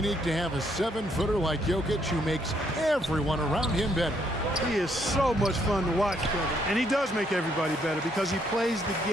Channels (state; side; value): normal; both; correlation 0.71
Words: to have a 7-footer like Jokic who makes everyone around him better. He is so much fun to watch, Kevin. And he does make everybody better because he plays the